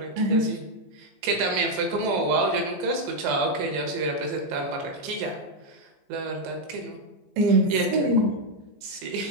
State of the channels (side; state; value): left; late; 15 ms